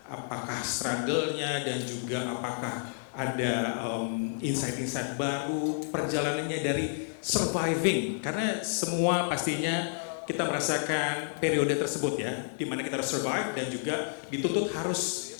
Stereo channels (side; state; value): right; silent; digital silence